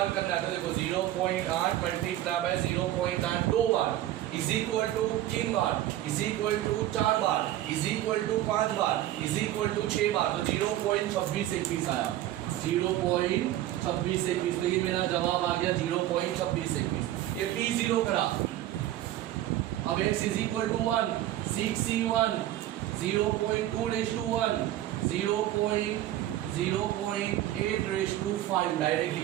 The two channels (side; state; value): left; quieter; 13.8 dB